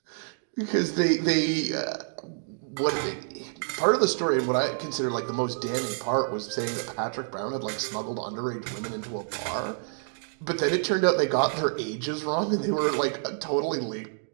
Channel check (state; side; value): silent; left; digital silence